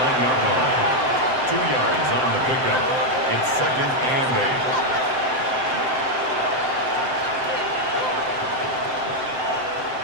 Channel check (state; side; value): late; left; 7.7 ms